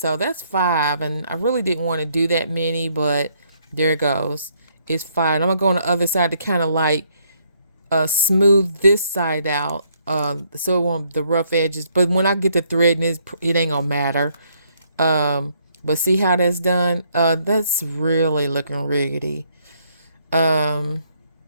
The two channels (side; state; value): both; inverted; correlation -0.70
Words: that's 5. And I really didn't want to do that many, but there it goes. It's 5. I'm gonna go on the other side to kind of like smooth this side out, so it won't the rough edges. But when I get to threading it ain't gonna matter. But see how that's done? That's really looking riggedy.